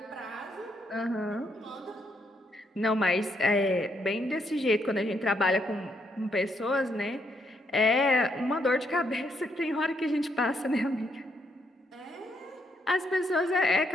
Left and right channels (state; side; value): normal; both; correlation 0.75